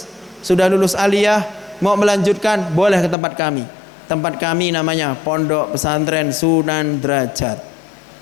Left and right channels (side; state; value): right; drops out; at 3.2 s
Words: aliyah, mau melanjutkan, boleh ke tempat kami. Tempat kami namanya Pondok Pesantren Sunan Derajat.